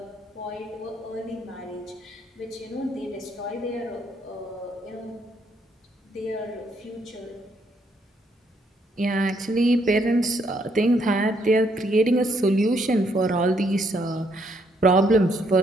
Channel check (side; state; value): both; normal; correlation 0.72